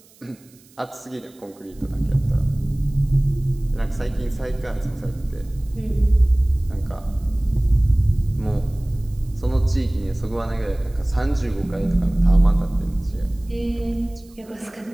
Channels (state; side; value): noise; right; hiss, 28 dB below the sound